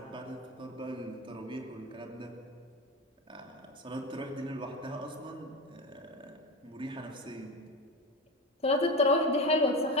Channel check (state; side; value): normal; both; correlation 0.22